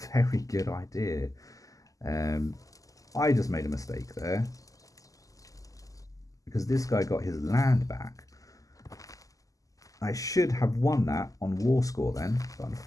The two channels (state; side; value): late; right; 0.17 ms